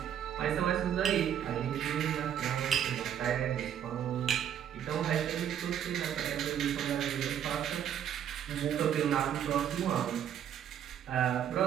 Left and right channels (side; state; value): left; quieter; 9.6 dB